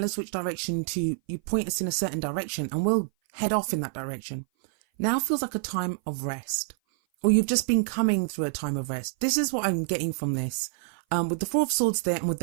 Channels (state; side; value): silent; left; 56 dB below the other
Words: us which direction you point us in a certain direction, and we'll head off in that direction. Now feels like a time of rest, or you've just been coming through a time of rest. This is what I'm getting from this. With the Four of Swords there, and with